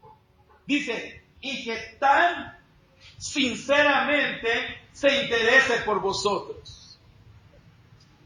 Dice, y que tan sinceramente se interese por vosotros.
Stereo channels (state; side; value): identical; both; correlation 1.00